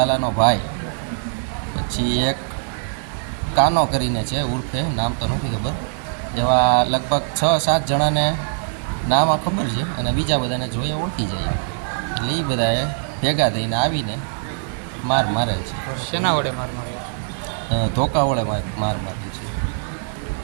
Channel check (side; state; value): left; silent; digital silence